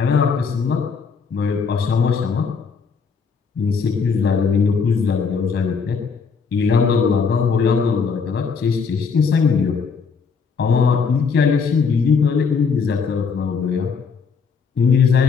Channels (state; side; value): quieter; right; 5.5 dB